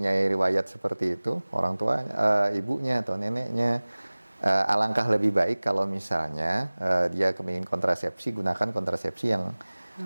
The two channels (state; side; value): inverted; both; correlation -1.00